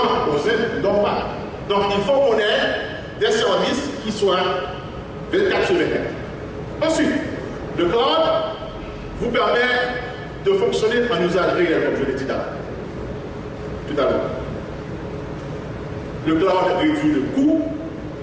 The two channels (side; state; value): both; identical; correlation 1.00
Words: ne dorment pas. Donc il faut qu'on ait des services qui soient 24/24. Ensuite, le cloud vous permet de fonctionner en usage réel, comme je l'ai dit tout à l'heure. Le cloud réduit le coût